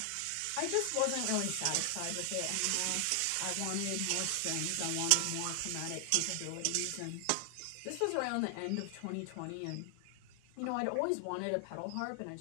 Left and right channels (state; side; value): different; both; correlation 0.00